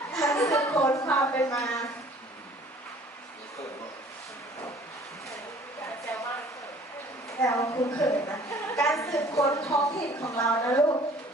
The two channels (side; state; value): both; normal; correlation 0.53